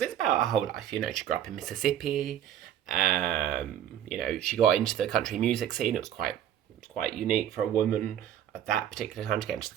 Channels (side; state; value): left; quieter; 10.5 dB